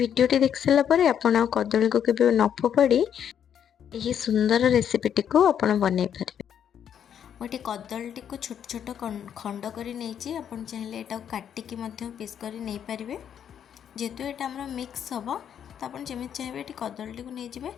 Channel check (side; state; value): right; quieter; 8.9 dB